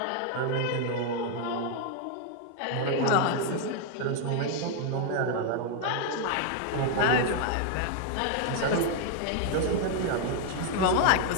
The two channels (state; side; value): different; both; correlation 0.00